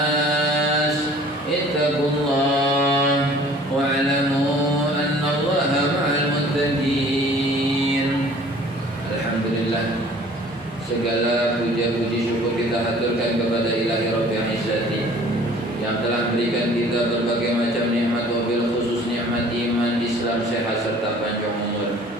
اتقوا الله واعلموا أن الله مع المتقين. Alhamdulillah, segala puja-puji syukur kita haturkan kepada Ilahi Rabbil Izzati yang telah berikan kita berbagai macam nikmat, wabil khusus nikmat iman, Islam, sehat serta panjang umur.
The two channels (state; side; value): normal; both; correlation 0.51